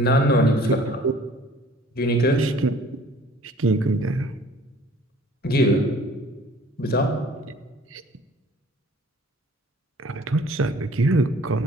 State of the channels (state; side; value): normal; both; correlation 0.52